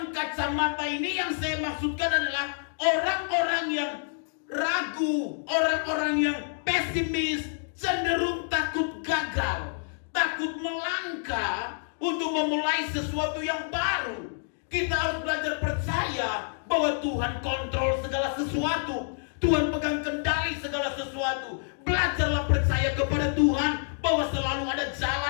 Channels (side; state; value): right; silent; digital silence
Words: kacamata ini yang saya maksudkan adalah orang-orang yang ragu, orang-orang yang pesimis, cenderung takut gagal, takut melangkah untuk memulai sesuatu yang baru. Kita harus belajar percaya bahwa Tuhan kontrol segala sesuatu. Tuhan pegang kendali segala sesuatu. Belajarlah percaya kepada Tuhan bahwa selalu ada